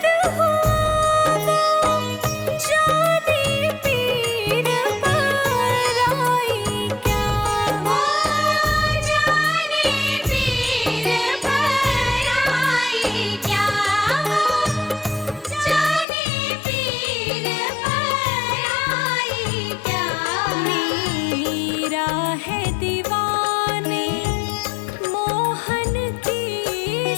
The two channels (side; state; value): right; drops out; at 16.1 s